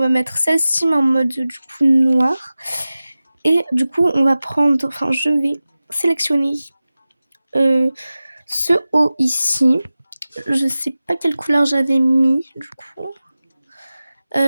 mettre celle-ci mais en mode du coup noir. Et du coup on va prendre, enfin je vais sélectionner ce haut ici. Je sais pas quelle couleur j'avais mis du coup.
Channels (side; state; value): both; inverted; correlation -0.96